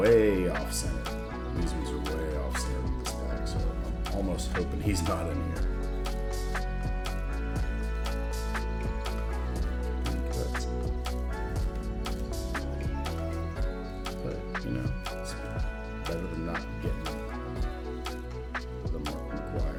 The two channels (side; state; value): both; identical; correlation 1.00